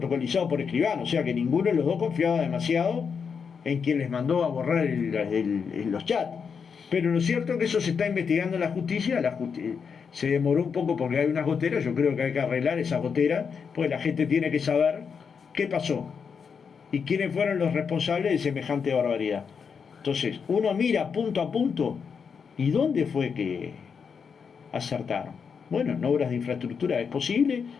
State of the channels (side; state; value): right; quieter; 6.2 dB